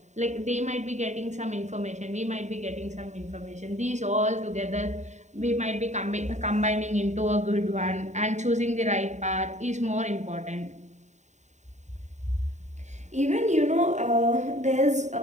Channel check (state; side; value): late; left; 0.34 ms